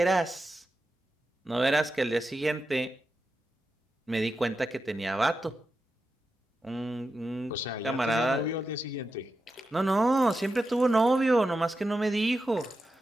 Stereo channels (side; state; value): both; normal; correlation 0.89